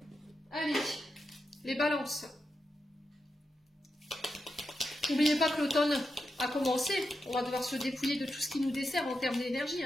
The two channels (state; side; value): normal; both; correlation 0.87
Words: Allez, les balances. N'oubliez pas que l'automne a commencé. On va devoir se dépouiller de tout ce qui nous dessert en termes d'énergie,